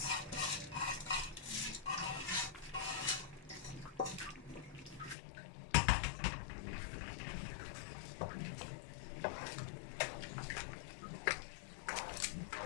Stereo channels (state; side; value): drops out; right; at 5.2 s